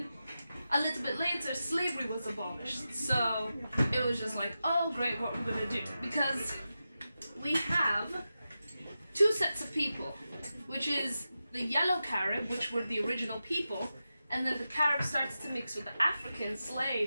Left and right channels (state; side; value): inverted; both; correlation -0.91